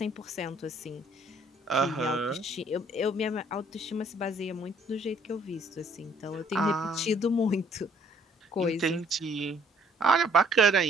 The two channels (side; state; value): both; normal; correlation 0.62